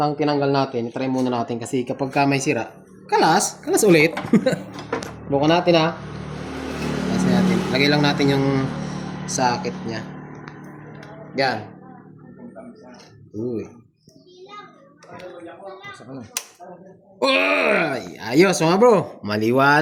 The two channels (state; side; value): identical; both; correlation 1.00